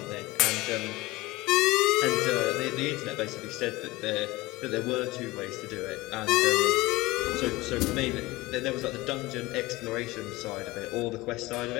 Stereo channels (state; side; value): quieter; right; 20.4 dB